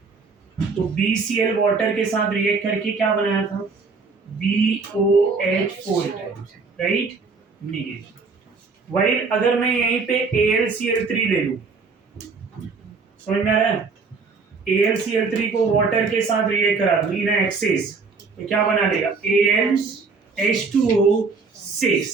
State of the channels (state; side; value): quieter; left; 4.6 dB